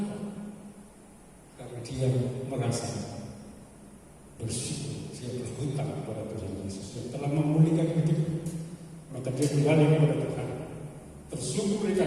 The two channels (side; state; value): both; identical; correlation 1.00